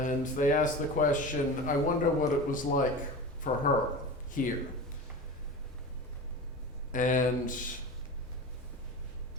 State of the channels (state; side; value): normal; both; correlation 0.30